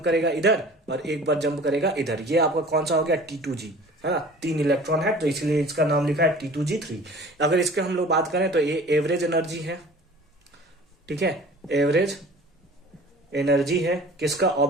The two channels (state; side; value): normal; both; correlation 0.44